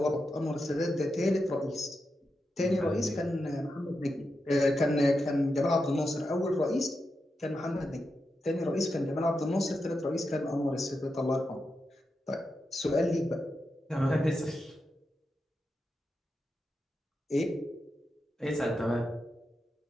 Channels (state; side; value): normal; both; correlation 0.87